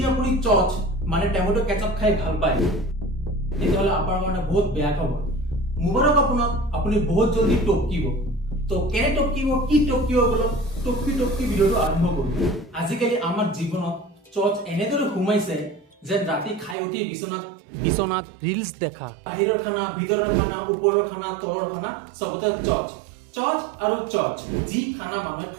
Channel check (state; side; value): drops out; left; at 16.8 s